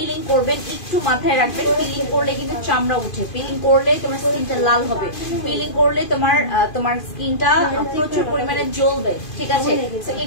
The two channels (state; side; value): late; right; 2.5 ms